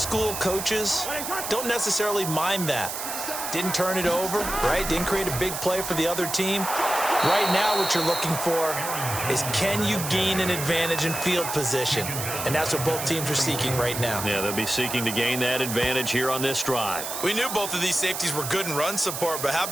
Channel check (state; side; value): noise; right; hiss, 5 dB below the sound